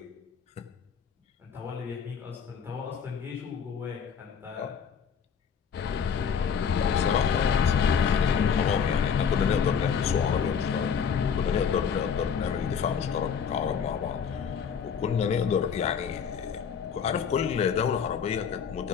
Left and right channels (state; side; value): quieter; right; 7.0 dB